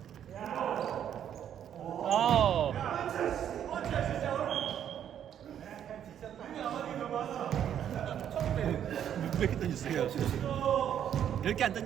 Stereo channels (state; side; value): quieter; left; 9.7 dB